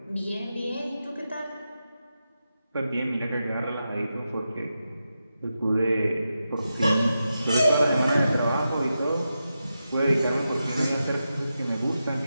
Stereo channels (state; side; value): inverted; both; correlation -0.89